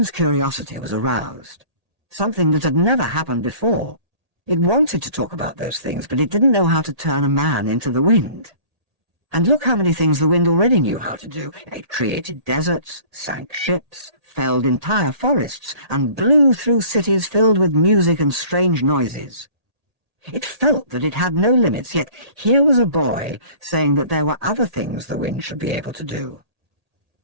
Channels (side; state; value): left; late; 1.8 ms